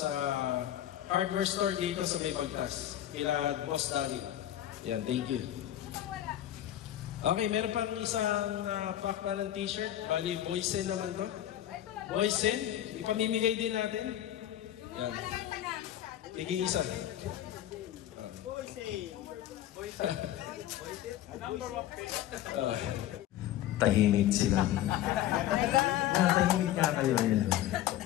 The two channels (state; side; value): quieter; right; 12.5 dB